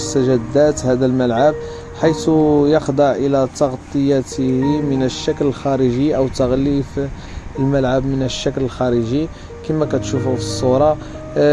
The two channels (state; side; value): identical; both; correlation 1.00